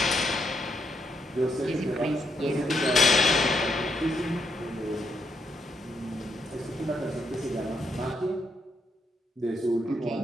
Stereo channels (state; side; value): normal; both; correlation 0.77